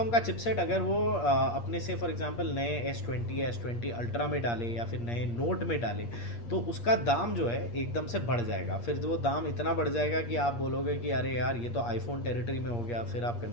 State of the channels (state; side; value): late; right; 8.5 ms